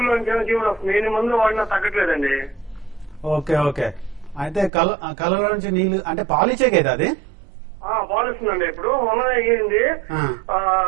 నుంచి జీవుడు వస్తుంది. ఎన్ని మందులు వాడినా తగ్గట్లేదండి. Okay okay. అయితే కళ్ళ నుంచి నీళ్లు అంటే పాలిచ్చే కదా అది? పాలిస్తుందండి. ఇప్పుడు మొన్న అయ్యింది,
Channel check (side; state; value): left; drops out; at 4.7 s